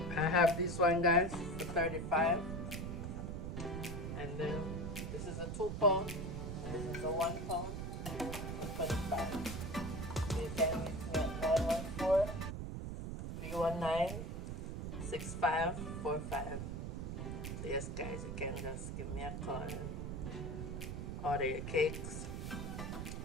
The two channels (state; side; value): noise; right; rumble, 4 dB below the sound